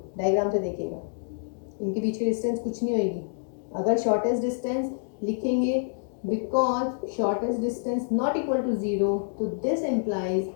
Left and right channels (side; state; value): right; silent; digital silence